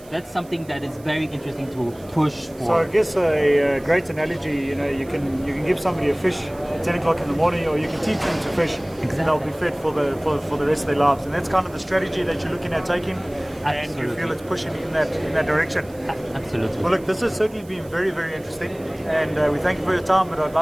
That's something that is very interesting to push for. So I guess a great analogy, you can give somebody a fish at 10 o'clock in the morning, or you can teach them to fish, and they'll be fed for the rest of their lives. And that's kind of the strategy that you're looking at taking, and you feel it's pushing in that direction. Absolutely. Well, look, this has certainly been very, very interesting, and we thank you for your time. But I'd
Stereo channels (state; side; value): noise; right; hiss, 25 dB below the sound